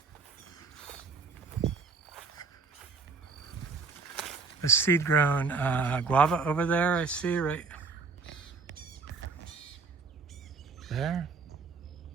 A seed-grown guava over there, I see right there.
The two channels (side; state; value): left; quieter; 4.8 dB